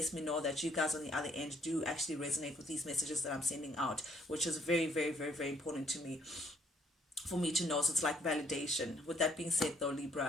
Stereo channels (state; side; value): normal; both; correlation 0.65